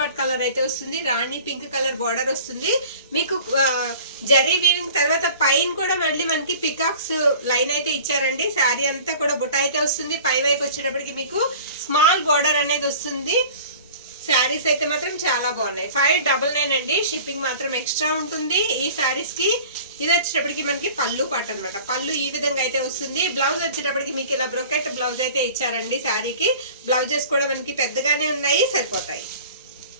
కలర్ అయితే వస్తుంది. రాణి పింక్ కలర్ బార్డర్ వస్తుంది. మీకు జరీ వీవింగ్ తర్వాత పైన కూడా మళ్ళీ మనకి పికాక్స్ లైన్ అయితే ఇచ్చారండి. శారీ అంతా కూడా బుట్ట అయితే వస్తుంది. పై వైపు వచ్చేటప్పటికి మీకు స్మాల్ బార్డర్ అనేది వస్తుంది. శారీస్ అయితే మాత్రం చాలా బాగున్నాయి. 599 అండి. షిప్పింగ్ మాత్రం ఎక్స్ట్రా ఉంటుంది ఈ శారీస్ కి. ఇది వచ్చేటప్పటికి మనకి పళ్ళు పాట అనమాట. పళ్ళు ఈ విధంగా అయితే వస్తుంది. బ్లౌజ్ వచ్చేటప్పటికి మీకు ఇలా బ్రొకెట్ బ్లౌజ్ అయితే ఇచ్చారండి. శారీకి బ్లౌజెస్ కూడా మనకి పెద్దగానే ఉన్నాయి, సరిపోతాయి.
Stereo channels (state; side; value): inverted; both; correlation -0.44